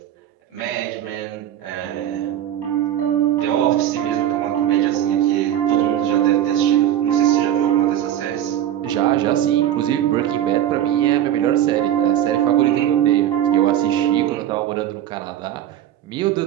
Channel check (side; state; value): left; quieter; 11.4 dB